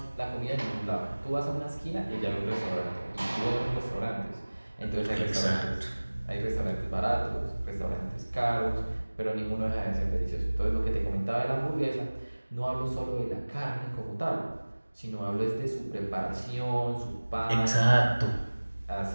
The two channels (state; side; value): inverted; both; correlation -1.00